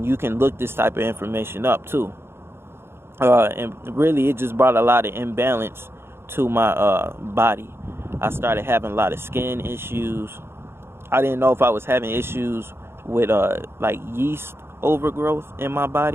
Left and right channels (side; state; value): left; late; 0.12 ms